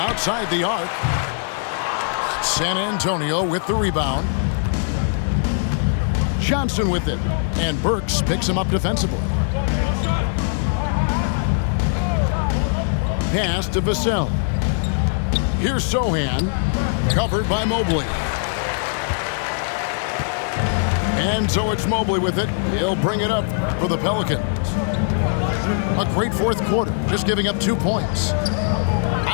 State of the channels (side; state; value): right; silent; digital silence